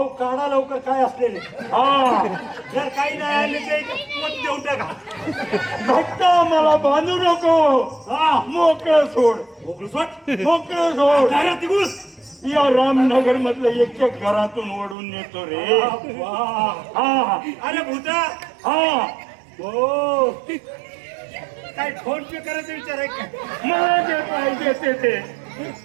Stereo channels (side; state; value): left; drops out; at 15.0 s